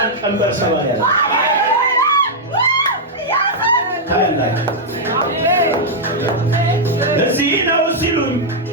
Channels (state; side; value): normal; both; correlation -0.05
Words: ቀንበር ሰባሪ ያለ ታያላችሁ። እዚህ ነው ሲሉኝ